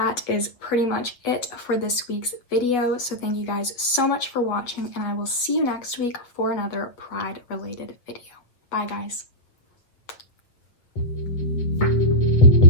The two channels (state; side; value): late; right; 8.0 ms